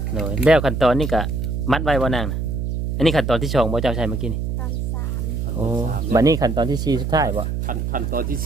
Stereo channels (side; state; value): right; noise; hum, 2 dB below the sound